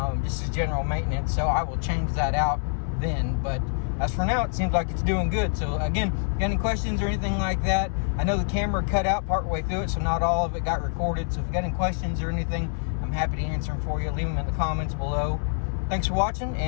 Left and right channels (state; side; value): silent; right; digital silence